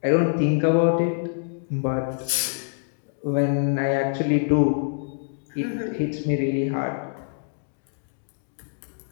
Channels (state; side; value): silent; right; digital silence